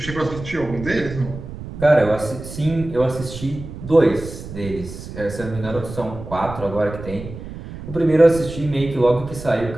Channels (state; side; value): noise; right; rumble, 11 dB below the sound